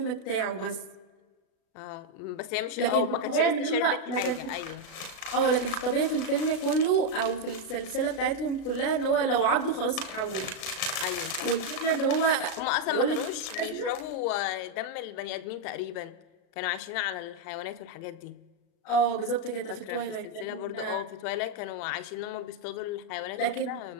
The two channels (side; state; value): right; late; 36 ms